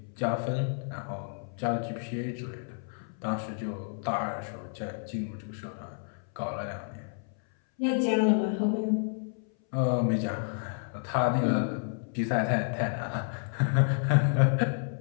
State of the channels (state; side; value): silent; right; 58 dB below the other